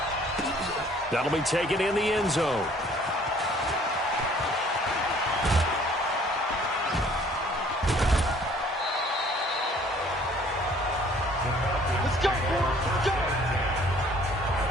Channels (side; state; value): both; normal; correlation 0.56